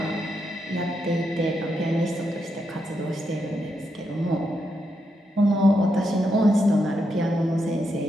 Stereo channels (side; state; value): both; normal; correlation 0.82